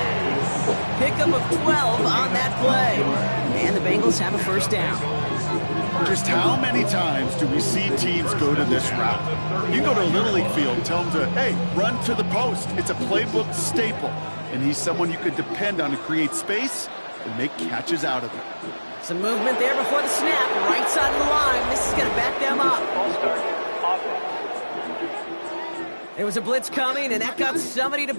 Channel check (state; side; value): inverted; both; correlation -1.00